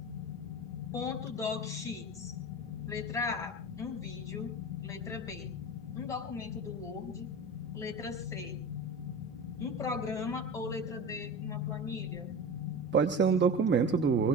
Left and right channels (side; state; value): both; normal; correlation 0.30